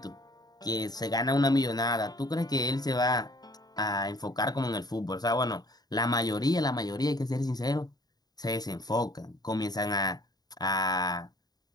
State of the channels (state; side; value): late; right; 0.19 ms